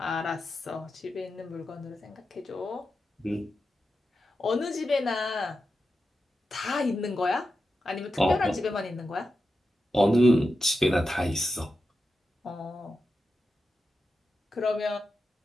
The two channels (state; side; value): normal; both; correlation 0.89